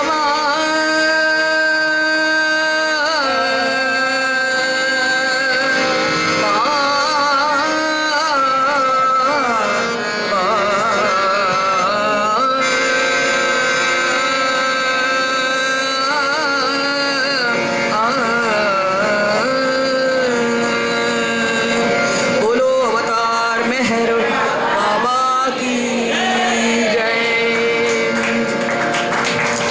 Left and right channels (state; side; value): identical; both; correlation 1.00